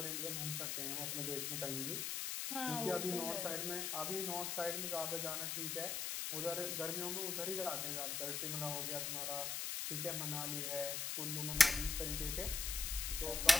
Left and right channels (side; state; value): left; noise; hiss, 1 dB below the sound